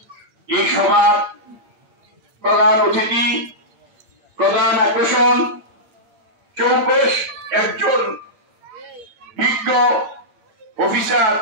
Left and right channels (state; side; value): late; left; 8.8 ms